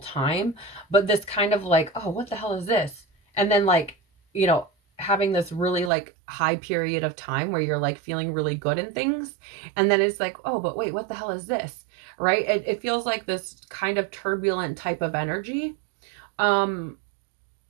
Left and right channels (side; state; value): left; drops out; at 5.9 s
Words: but this kind of like, oh, what the hell is this? And then like, you know, having this really like high period of time where you're like feeling really good in things. And then it's like, oh, but wait, what the hell is this? Right? It feels like this kind of turbulent type of energy.